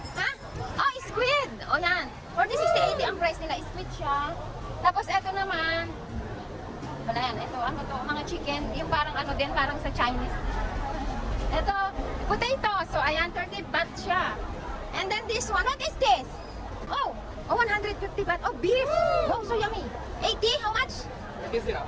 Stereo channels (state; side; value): identical; both; correlation 1.00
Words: Ha? Oh, squid! O yan. 40, 60, 80 ang price nila. Squid siya. Tapos ito naman, wala yan. Ito, ano to? Mga chicken. Yung parang ano din, parang sa Chinese. Ito, potato. So, ayan, 30 baht siya. And then this one, what is this? Oh, 150 baht. Oh, beef. Oh, so yummy. 80? How much? 80?